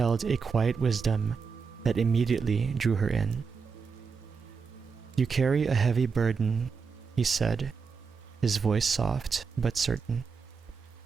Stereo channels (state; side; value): quieter; left; 5.5 dB